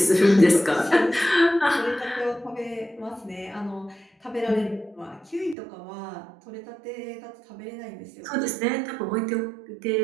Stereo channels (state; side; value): drops out; left; at 5.6 s